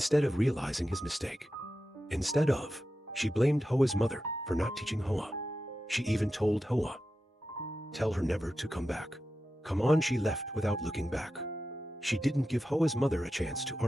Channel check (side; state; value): both; normal; correlation 0.91